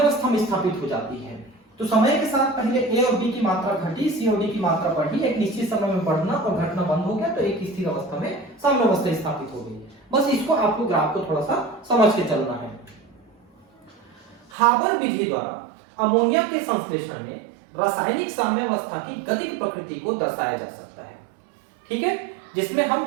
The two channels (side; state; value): left; drops out; at 14.5 s